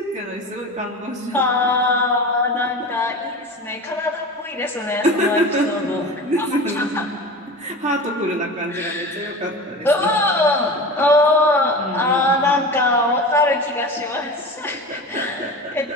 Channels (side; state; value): both; normal; correlation 0.31